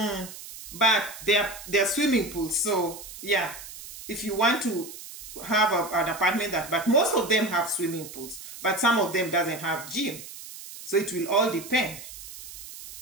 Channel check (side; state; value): right; noise; hiss, 14 dB below the sound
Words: but they're swimming pools. So yeah, if you want to have an apartment but most of them have swimming pools, but some of them doesn't have gym. So it will all depend.